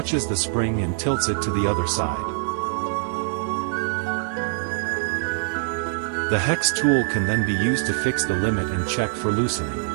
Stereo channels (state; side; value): silent; left; 56 dB below the other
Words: the spring and tilts it to the other side. The hex tool can then be used to fix the limit and check for loosening.